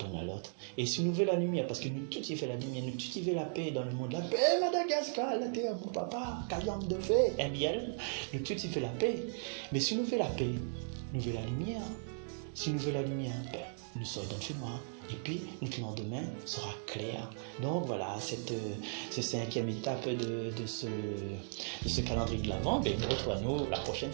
à l'autre. Et si nous voulons la lumière, parce que nous tous y fait la lumière, nous tous y fait la paix dans le monde, la paix Madagascar, la terre, mon papa, Kayam de fait, un miel, nous tous y fait la paix. Mais si nous voulons la paix, nous voulons la lumière. Si nous voulons la lumière, nous sortons dans le noir. Et puis, notre lendemain sera clair. Donc voilà, cette cinquième étape de ce calendrier de l'Avent, nous retrouvons la prochaine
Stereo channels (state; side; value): silent; left; 53 dB below the other